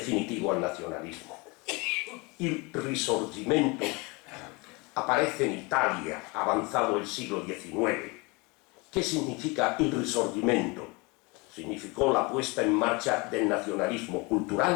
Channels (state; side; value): quieter; right; 27.3 dB